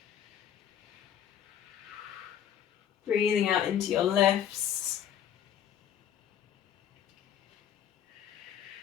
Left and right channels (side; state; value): right; quieter; 9.7 dB